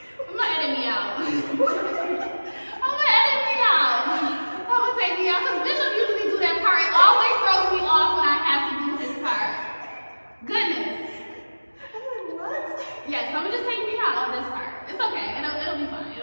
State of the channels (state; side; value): inverted; both; correlation -1.00